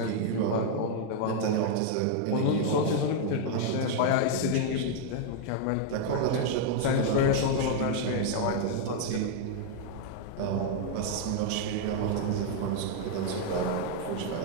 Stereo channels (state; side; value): different; both; correlation 0.00